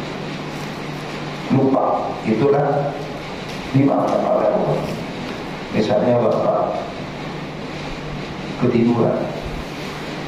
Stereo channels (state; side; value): identical; both; correlation 1.00